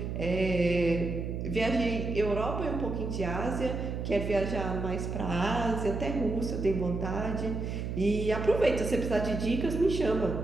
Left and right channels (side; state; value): right; noise; hum, 4 dB below the sound